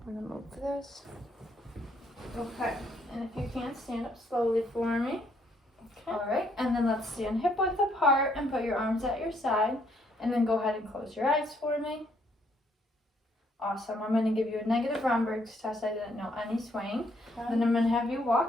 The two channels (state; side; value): normal; both; correlation 0.70